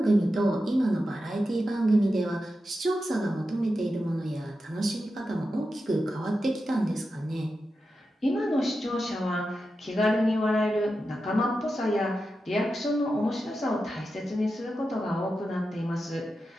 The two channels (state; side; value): normal; both; correlation 0.90